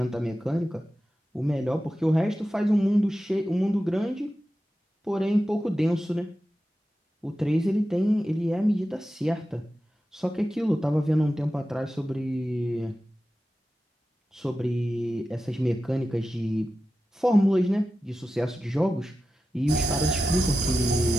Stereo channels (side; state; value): both; normal; correlation 0.92